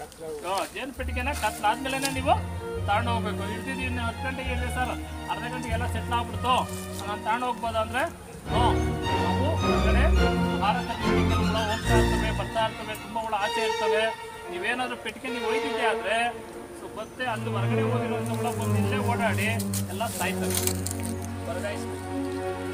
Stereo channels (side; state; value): both; identical; correlation 1.00